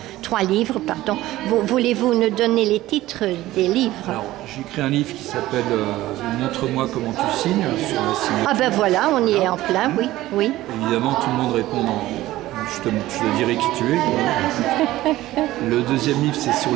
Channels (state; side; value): quieter; left; 16.2 dB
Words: 3 livres, pardon. Voulez-vous nous donner les titres des livres? Alors, j'ai écrit un livre qui s'appelle Montre-moi comment tu signes sur la signature. Ah ben voilà, on y est en plein, oui. Évidemment, tout le monde répond je te dirai qui tu es. Le deuxième livre, c'est sur